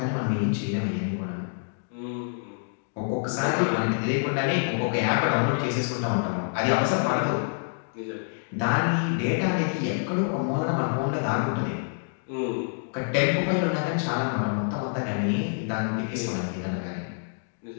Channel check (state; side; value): silent; right; digital silence